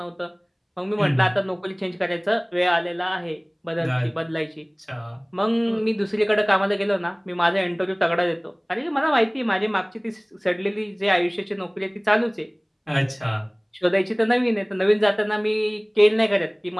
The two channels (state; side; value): identical; both; correlation 1.00